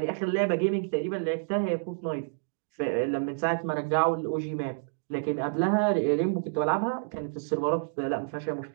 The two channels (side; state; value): left; silent; digital silence